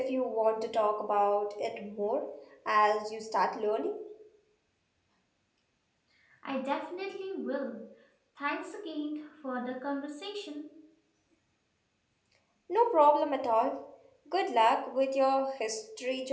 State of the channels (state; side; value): identical; both; correlation 1.00